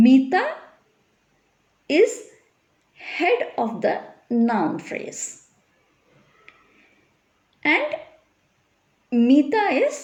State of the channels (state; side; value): identical; both; correlation 1.00